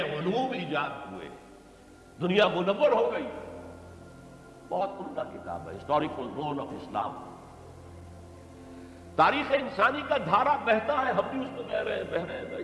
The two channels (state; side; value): identical; both; correlation 1.00